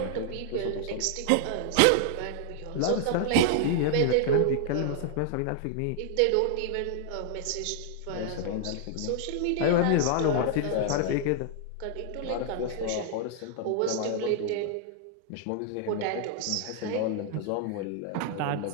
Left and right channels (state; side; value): different; both; correlation 0.00